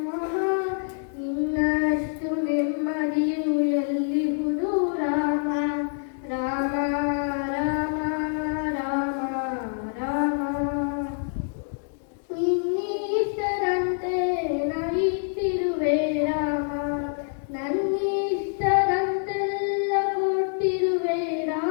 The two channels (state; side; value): silent; right; digital silence